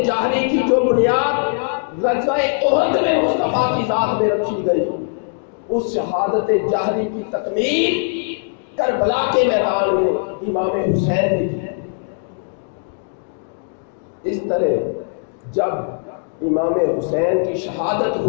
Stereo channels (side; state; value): right; silent; digital silence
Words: جہری کی جو بنیاد غزوہ احد میں مصطفیٰ کی ذات میں رکھی گئی، اس شہادت جہری کی تکمیل کربلا کے میدان میں امام حسین نے کی۔ اس طرح جب امام حسین کی شہادت